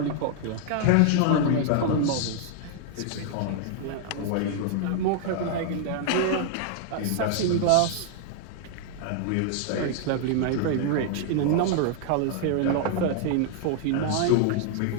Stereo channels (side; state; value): both; different; correlation 0.00